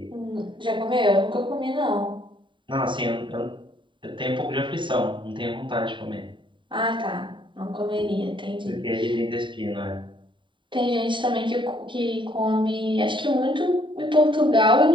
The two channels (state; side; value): late; left; 0.23 ms